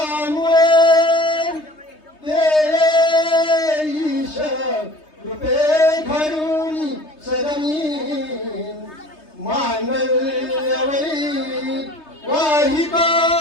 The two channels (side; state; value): right; late; 3.2 ms